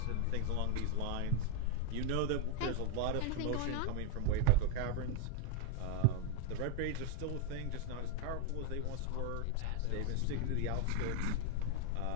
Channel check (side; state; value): both; different; correlation 0.00